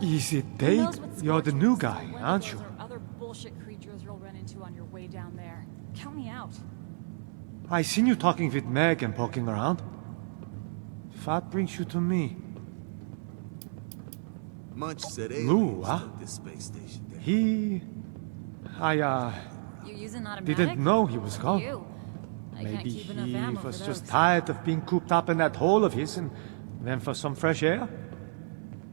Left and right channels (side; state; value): left; silent; 57 dB below the other